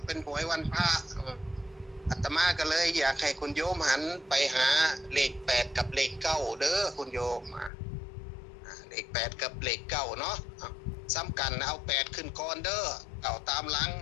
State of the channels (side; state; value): right; drops out; at 7.7 s